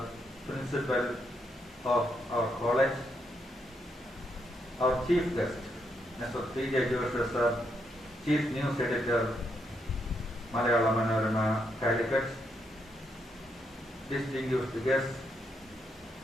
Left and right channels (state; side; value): normal; both; correlation 0.78